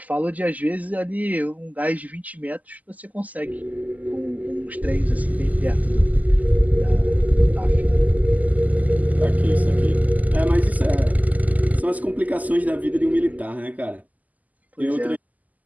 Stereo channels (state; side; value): late; left; 0.078 ms